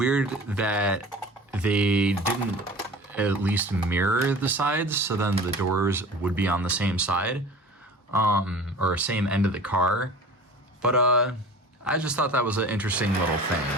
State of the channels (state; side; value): normal; both; correlation 0.40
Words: that they didn't at least mirror the sides, so then the doors would be on the same side, or same end of the car. But I just thought that was an interesting little thing,